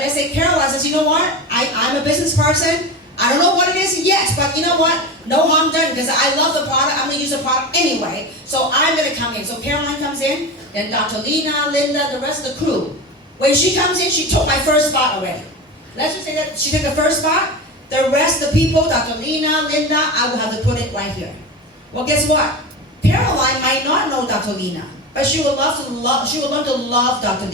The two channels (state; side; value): normal; both; correlation 0.25